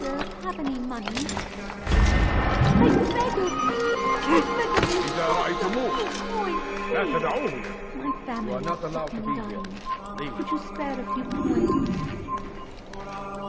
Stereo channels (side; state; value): both; identical; correlation 1.00